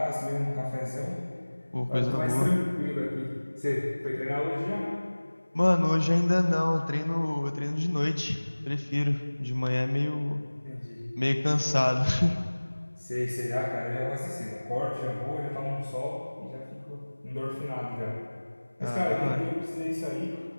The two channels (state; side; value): inverted; both; correlation -1.00